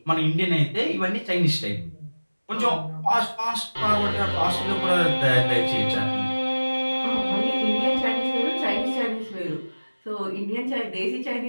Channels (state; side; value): inverted; both; correlation -1.00